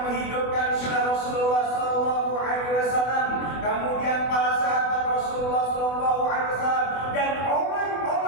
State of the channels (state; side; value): late; right; 24 ms